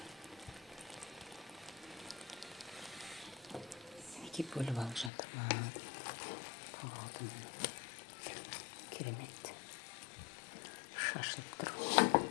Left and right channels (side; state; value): right; drops out; at 5.1 s